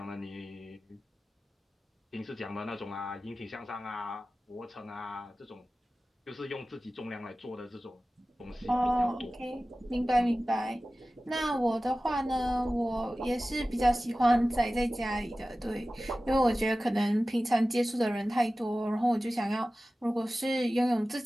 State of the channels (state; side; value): normal; both; correlation 0.96